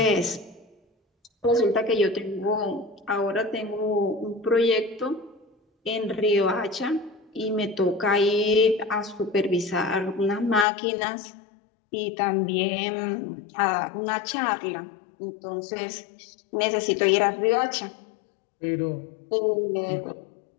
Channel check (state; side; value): drops out; right; at 10.7 s